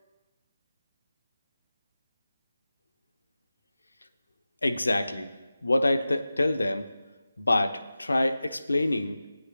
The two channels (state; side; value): inverted; both; correlation -0.95